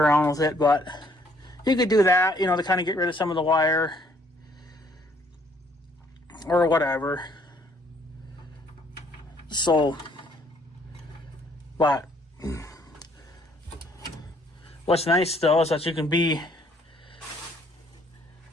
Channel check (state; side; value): normal; both; correlation 0.64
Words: with it, but you could do that, to kind of get rid of some of the wire or whatever. So, but what's nice though is that you can be